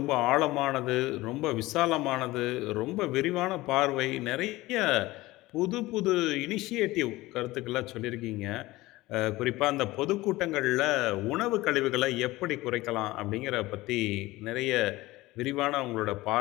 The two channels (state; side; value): quieter; right; 18.9 dB